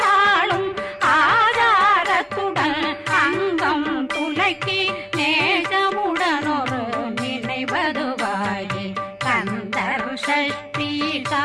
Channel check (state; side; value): identical; both; correlation 1.00